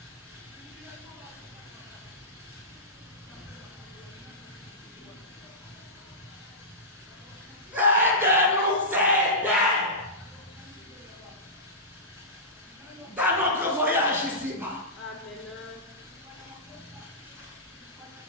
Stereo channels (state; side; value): normal; both; correlation -0.16